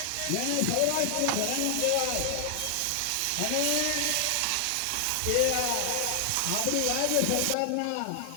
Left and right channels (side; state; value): both; different; correlation 0.00